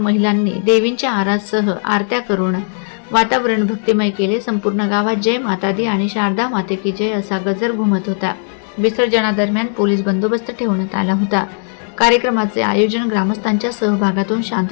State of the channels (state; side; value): silent; right; 59 dB below the other